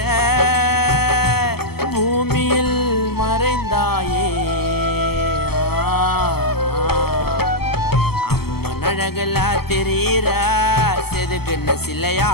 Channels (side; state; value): right; late; 0.96 ms